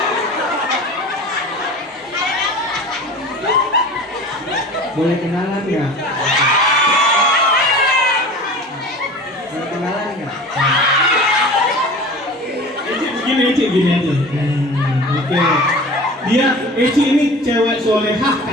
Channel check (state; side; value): normal; both; correlation 0.38